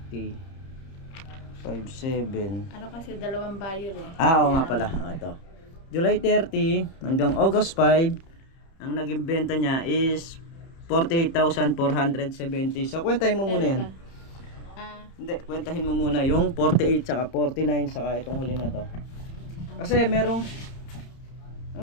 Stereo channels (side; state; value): right; late; 31 ms